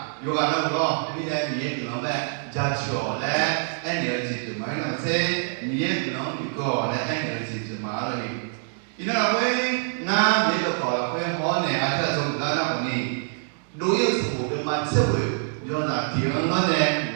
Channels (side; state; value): left; silent; digital silence